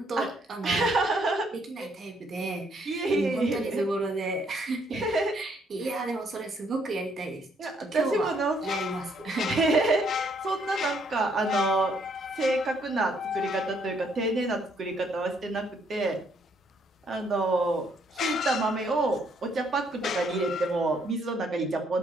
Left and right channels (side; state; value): both; normal; correlation 0.69